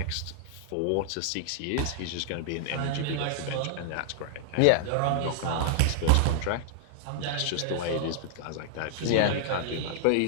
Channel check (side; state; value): both; different; correlation 0.00